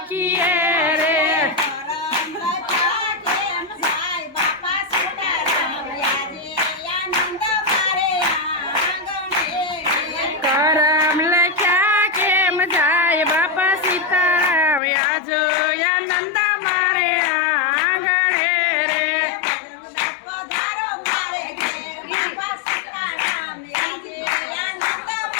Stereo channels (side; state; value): right; drops out; at 14.8 s